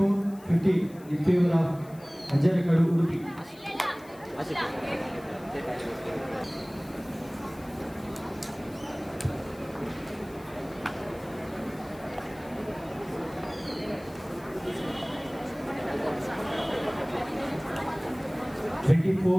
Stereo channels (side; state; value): left; noise; hiss, 24 dB below the sound